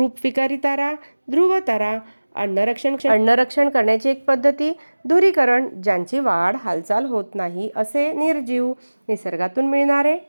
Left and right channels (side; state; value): both; inverted; correlation -1.00